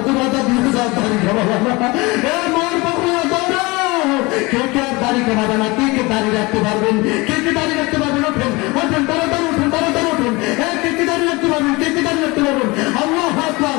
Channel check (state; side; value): quieter; right; 24.0 dB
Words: তুলে দিয়ে যাও তারিখ মায়ের পাখু কে কে আর দাড়ি কমাবে না, কে কে দাড়ি রাখতে পারবেন, কে কে দাড়ি রাখতে পারবেন, ওঠেন ওঠেন, তাড়াতাড়ি ওঠেন, তাড়াতাড়ি ওঠেন। কে কে দাড়ি রাখতে পারবেন, কে কে দাড়ি রাখতে পারবেন? আল্লাহু আকবার,